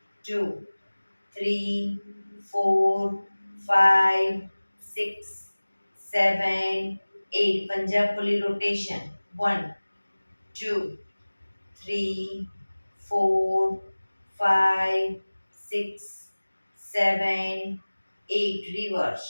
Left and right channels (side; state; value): both; inverted; correlation -1.00